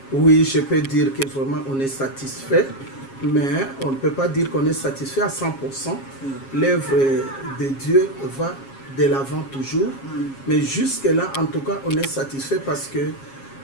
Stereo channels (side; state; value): right; late; 7.4 ms